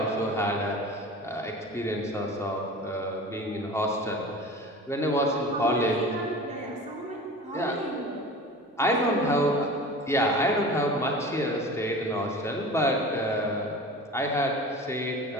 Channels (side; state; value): both; normal; correlation 0.36